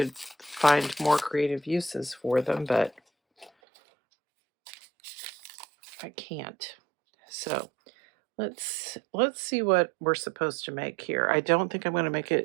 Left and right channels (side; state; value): left; drops out; at 3.5 s